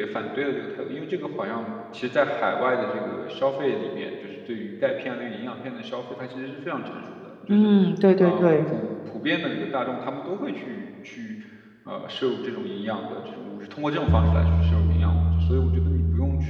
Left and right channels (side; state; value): both; identical; correlation 1.00